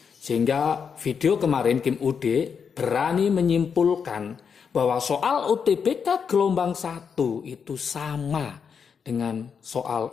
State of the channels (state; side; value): quieter; right; 6.5 dB